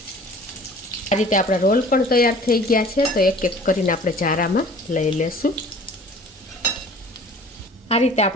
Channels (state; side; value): normal; both; correlation 0.48